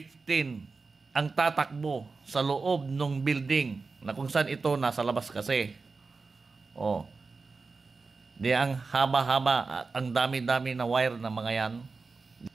ang tatakbo sa loob ng building na kung saan ito nasa labas kasi. Di ang haba-haba at ang dami-dami na wire na mga yan.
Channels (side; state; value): left; quieter; 4.2 dB